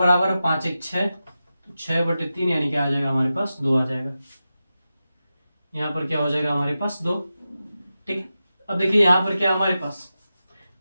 है 5 1 6, तो 6/3 यानी क्या आ जाएगा हमारे पास 2 आ जाएगा। यहाँ पर क्या हो जाएगा हमारे पास 2, ठीक है। अब देखिए यहाँ पर क्या हमारे पास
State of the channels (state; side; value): inverted; both; correlation -0.92